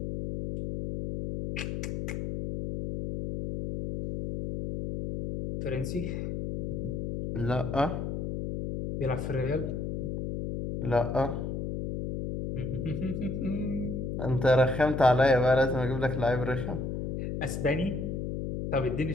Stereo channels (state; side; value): noise; left; hum, 3 dB below the sound